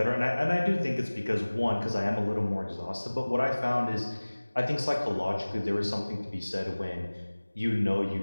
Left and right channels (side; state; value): both; inverted; correlation -1.00